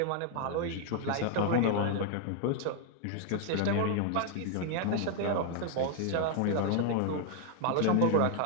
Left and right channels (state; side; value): different; both; correlation 0.00